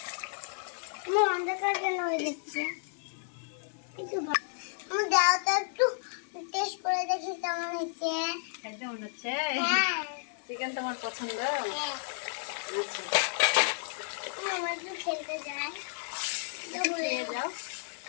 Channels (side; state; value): right; silent; digital silence